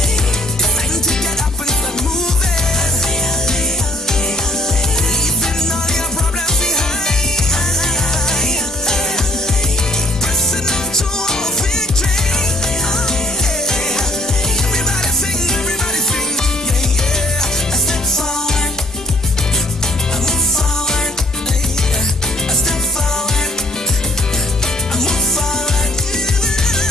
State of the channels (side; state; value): both; normal; correlation 0.61